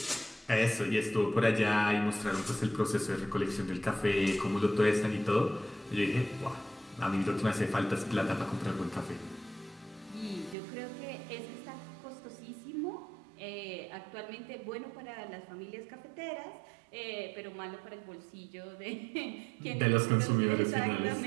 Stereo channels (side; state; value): left; drops out; at 10.6 s